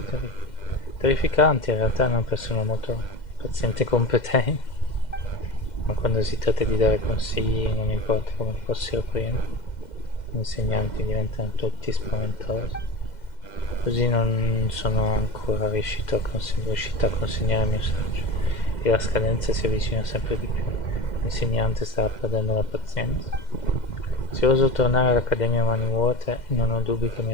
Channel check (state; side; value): late; right; 2.1 ms